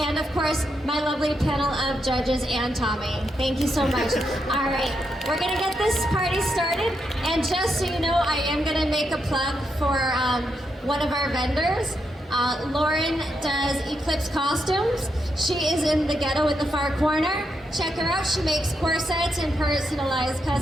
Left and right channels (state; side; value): normal; both; correlation 0.82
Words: of course, my lovely panel of judges and Tommy. Thank you so much. All right, we're gonna get this party started. And just so you know, I am gonna make a plug for one of our vendors. Lauren does Eclipse costumes. She is in the ghetto in the far corner. Check her out. She makes corsets and personalized